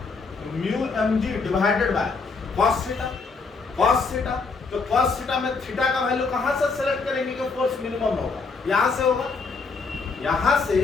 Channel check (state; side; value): quieter; right; 4.4 dB